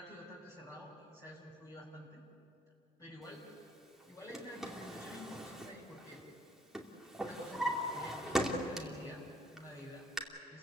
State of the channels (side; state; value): both; normal; correlation 0.62